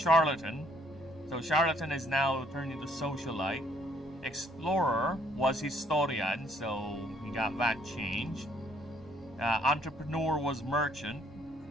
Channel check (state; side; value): normal; both; correlation 0.65